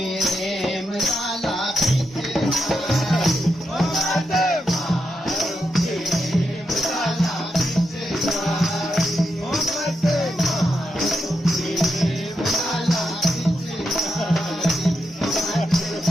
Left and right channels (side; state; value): both; normal; correlation 0.84